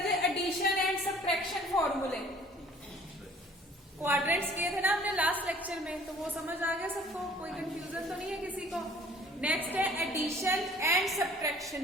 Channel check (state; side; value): normal; both; correlation 0.53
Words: एडिशन एंड सब्ट्रैक्शन फॉर्मूले। क्वाड्रेंट्स किए थे ना हमने लास्ट लेक्चर में, तो वो समझ आ गया सबको, कोई कंफ्यूजन तो नहीं है किसी को। नेक्स्ट है एडिशन एंड